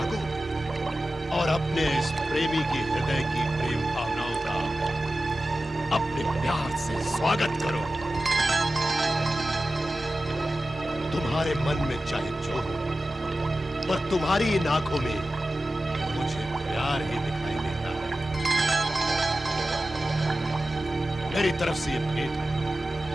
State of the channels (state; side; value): normal; both; correlation 0.94